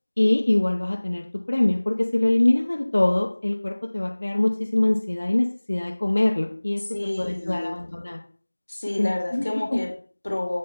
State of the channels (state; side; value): inverted; both; correlation -1.00